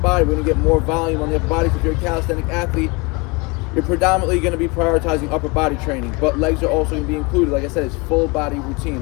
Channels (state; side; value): quieter; right; 27.7 dB